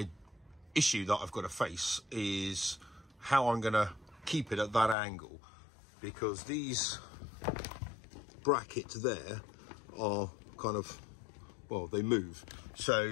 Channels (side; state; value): right; drops out; at 5.0 s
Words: issue that I've got to face is how I'm going to keep it at that angle, because these brackets there are kind of, well, they move,